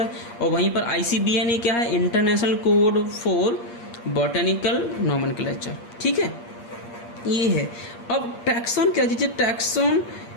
और वहीं पर ICBN ये क्या है? International code for botanical nomenclature. ठीक है, ये है। अब टैक्सोन क्या चीज़ है? Taxon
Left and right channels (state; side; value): late; right; 8.6 ms